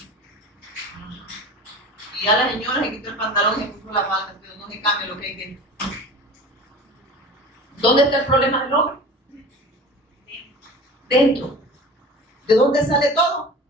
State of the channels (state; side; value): normal; both; correlation 0.37